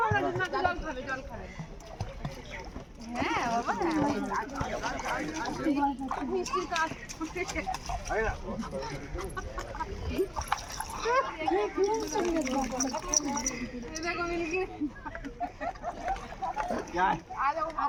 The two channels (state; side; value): identical; both; correlation 1.00